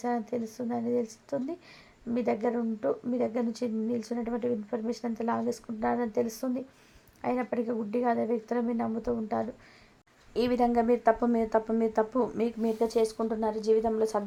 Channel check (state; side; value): identical; both; correlation 1.00